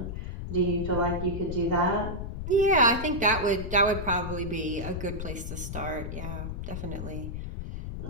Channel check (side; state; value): left; noise; rumble, 6 dB below the sound